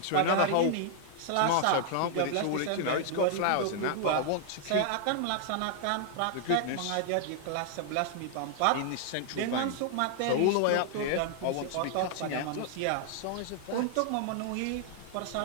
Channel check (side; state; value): both; different; correlation 0.00